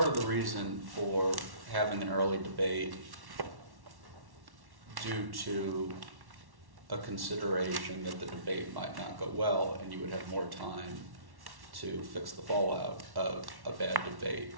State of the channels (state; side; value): late; left; 1.1 ms